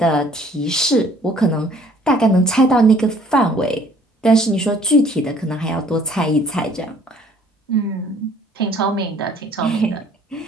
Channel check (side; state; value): both; normal; correlation 0.57